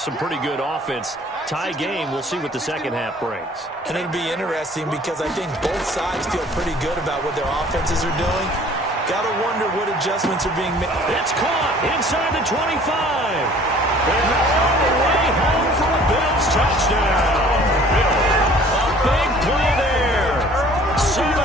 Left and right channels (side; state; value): both; normal; correlation 0.52